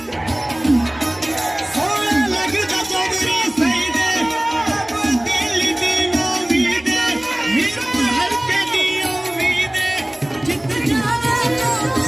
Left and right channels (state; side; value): noise; right; hum, 29 dB below the sound